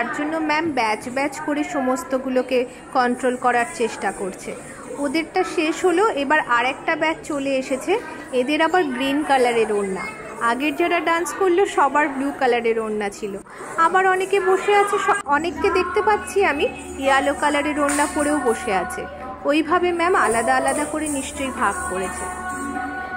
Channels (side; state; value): both; identical; correlation 1.00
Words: জন্য ম্যাম ব্যাচ ব্যাচ করে সমস্তগুলোকে কন্ট্রোল করার চেষ্টা করছে। ওদেরটা শেষ হলো, এবার আরেকটা ব্যাচ চলে এসেছে, এদের আবার গ্রিন কালারের ওড়না। আগের যারা ডান্স করলো সবার ব্লু কালারের ওড়না ছিল। আবার অনেকে বসে আছে, অনেককে দেখতে পাচ্ছি আমি ইয়েলো কালারের ওড়না পরেও বসে আছে। ওইভাবে ম্যাম আলাদা আলাদা করে নিশ্চয়ই ভাগ করেছে।